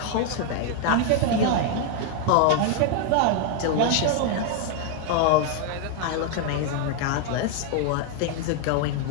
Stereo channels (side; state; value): both; different; correlation 0.00